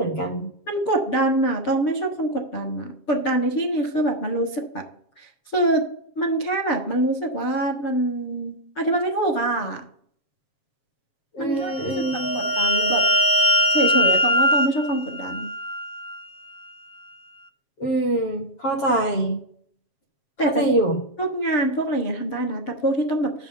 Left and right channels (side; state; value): right; late; 7.4 ms